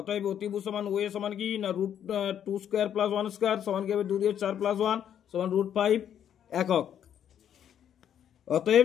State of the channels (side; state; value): right; quieter; 9.5 dB